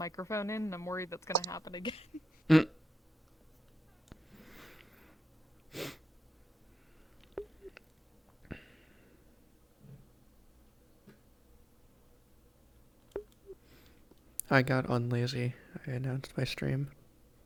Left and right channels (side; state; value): both; normal; correlation 0.91